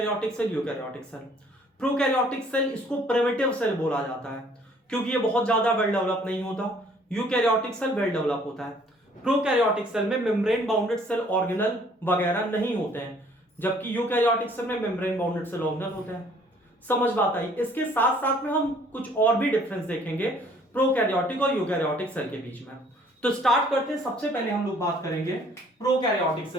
cell, eukaryotic cell. Prokaryotic cell, इसको प्रिमिटिव सेल बोला जाता है क्योंकि ये बहुत ज्यादा वेल डेवलप नहीं होता। यूकैरियोटिक सेल वेल डेवलप होता है। प्रोकैरियोटिक सेल में मेम्ब्रेन बाउंडेड सेल ऑर्गेनल वगैरह नहीं होते हैं, जबकि यूकैरियोटिक सेल में मेम्ब्रेन बाउंडेड सेल ऑर्गेनल होते हैं। समझ बात आई। इसके साथ साथ में हम कुछ और भी डिफरेंस देखेंगे प्रोकैरियोटिक और यूकैरियोटिक सेल के बीच में। तो स्टार्ट करते हैं। सबसे पहले हम लोग बात करेंगे प्रोकैरियोटिक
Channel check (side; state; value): both; normal; correlation 0.59